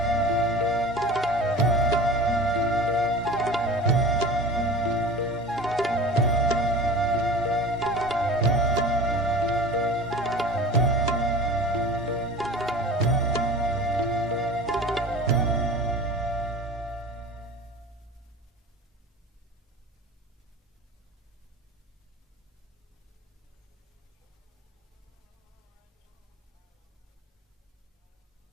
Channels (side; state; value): both; normal; correlation 0.37